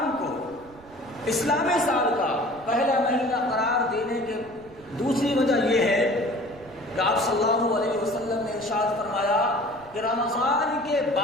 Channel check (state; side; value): noise; right; rumble, 24 dB below the sound